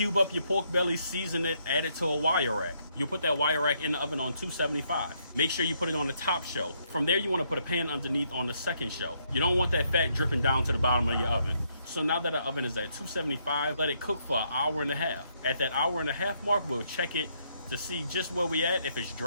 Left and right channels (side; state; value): both; inverted; correlation -0.73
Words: up your pork belly, season it, add it to a wire rack. You'll put that wire rack in the oven on 275. Make sure you put it on the top shelf. From there, you want to put a pan underneath on the second shelf. You don't want that fat dripping down to the bottom of your oven. So now that the oven is at 275, let it cook for an hour and a half. At that hour and a half mark, we'll check it to see just where we at. If it's